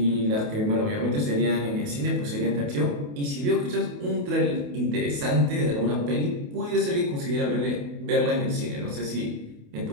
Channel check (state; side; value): late; left; 28 ms